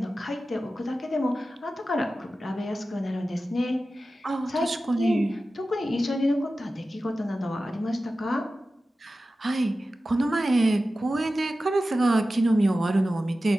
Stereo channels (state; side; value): normal; both; correlation 0.94